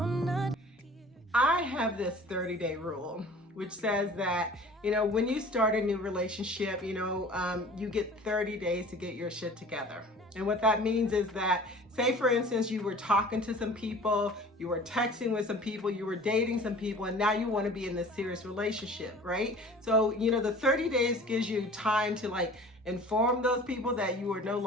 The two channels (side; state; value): both; normal; correlation 0.45